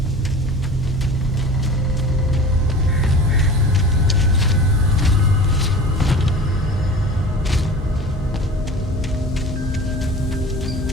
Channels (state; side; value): normal; both; correlation 0.39